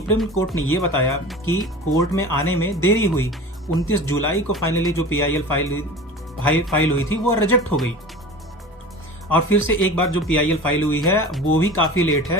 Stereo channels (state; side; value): normal; both; correlation 0.36